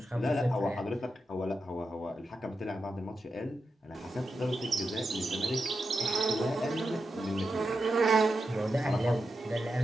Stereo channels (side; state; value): both; normal; correlation 0.88